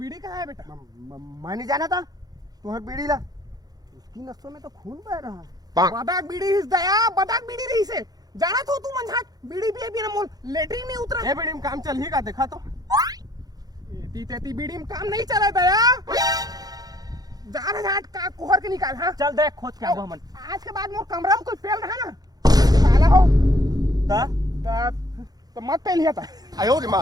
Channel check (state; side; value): late; left; 0.19 ms